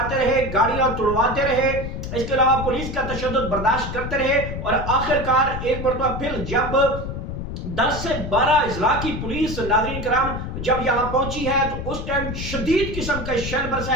رہے، گاڑیاں توڑواتے رہے، اس کے علاوہ پولیس کا تشدد برداشت کرتے رہے، اور آخرکار ایک مرتبہ پھر جب 10 سے 12 اضلاع کی پولیس ناظرین کرام جب یہاں پہنچی ہے تو اس ٹائم شدید قسم کا شیل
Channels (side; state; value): left; noise; rumble, 6 dB below the sound